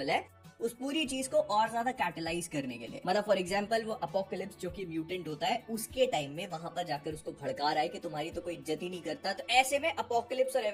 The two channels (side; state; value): both; identical; correlation 1.00